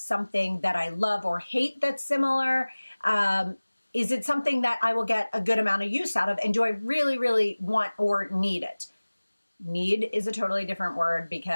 that I love or hate that's similar? Is it something that I will get a good amount of use out of? And do I really, really want or need it? Need is a totally different word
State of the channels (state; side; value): inverted; both; correlation -1.00